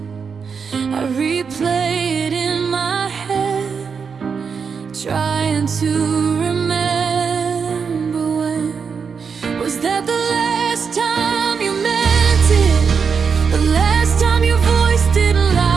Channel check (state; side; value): quieter; left; 5.9 dB